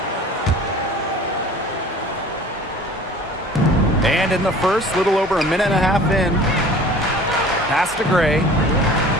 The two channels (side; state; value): both; normal; correlation 0.45